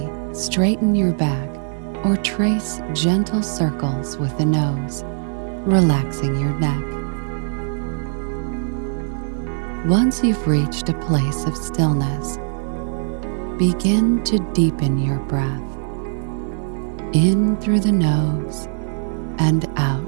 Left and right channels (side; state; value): left; silent; digital silence